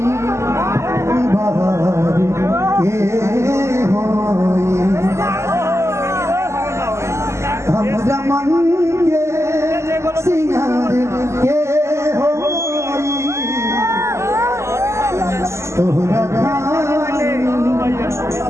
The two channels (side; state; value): left; late; 0.13 ms